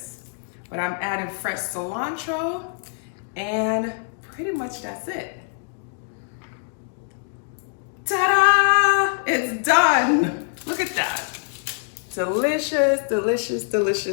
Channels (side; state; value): right; silent; 63 dB below the other